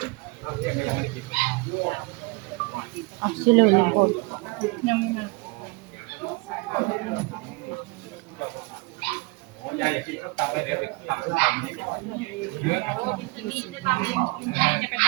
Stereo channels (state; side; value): quieter; left; 27.2 dB